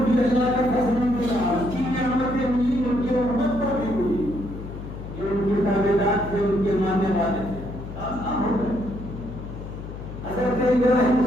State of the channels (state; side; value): noise; left; hum, 10 dB below the sound